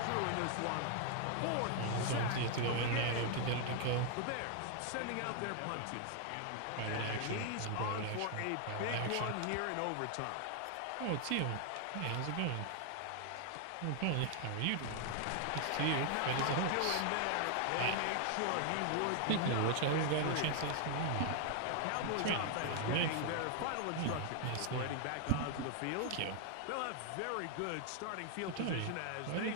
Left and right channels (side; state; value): both; different; correlation 0.00